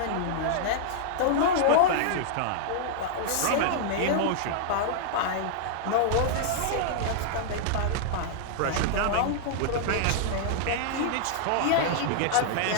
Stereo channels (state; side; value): different; both; correlation -0.01